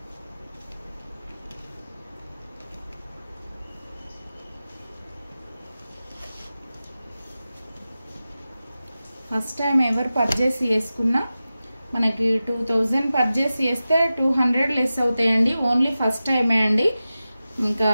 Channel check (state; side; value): inverted; both; correlation -0.94